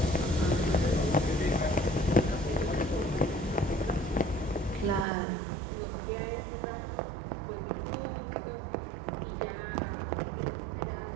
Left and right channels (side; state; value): left; drops out; at 5.1 s